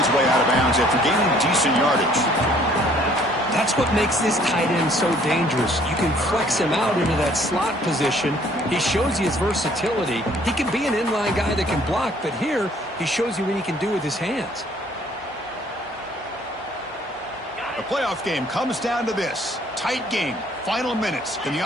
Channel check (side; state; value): both; normal; correlation 0.59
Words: way out of bounds after gaining decent yardage. That's what makes this tight end so dangerous. You can flex him out into that slot position. He shows you his versatility. He can be an inline guy that can block, but here he shows you what he can do with his hands. The playoff game comes down to this. Tight game. Final minutes. Can